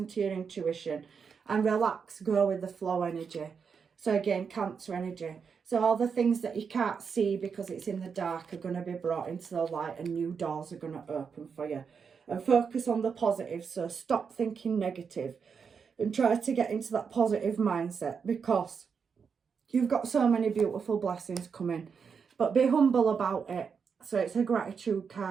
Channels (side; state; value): left; quieter; 6.1 dB